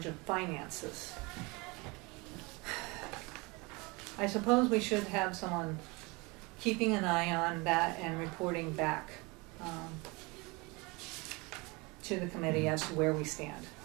of finances. I suppose we should have someone keeping an eye on that and reporting back to the committee as to where we stand.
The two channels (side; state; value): left; quieter; 26.2 dB